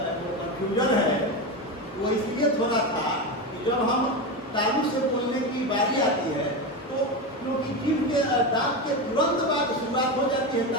कंफ्यूजन है वो इसलिए थोड़ा था कि जब हम तालु से बोलने की बारी आती है तो क्योंकि जीव के दांत के तुरंत बाद शुरुआत हो जाती है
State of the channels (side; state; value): both; normal; correlation 0.17